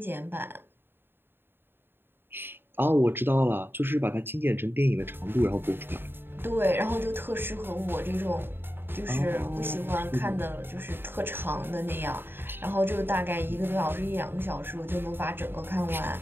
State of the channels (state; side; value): late; left; 0.10 ms